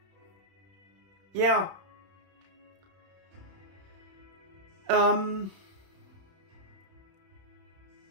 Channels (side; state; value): left; late; 31 ms